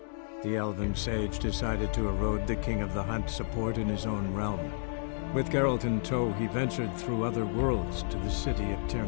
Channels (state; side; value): silent; right; digital silence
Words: The elven sage decided to erode the King of the Hunt's support in his own realm. With Geralt in tow, he ventured through other worlds to the city of Tir